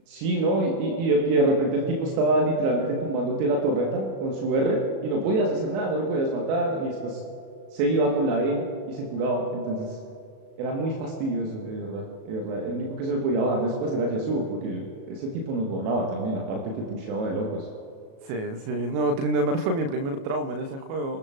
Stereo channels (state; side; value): late; left; 37 ms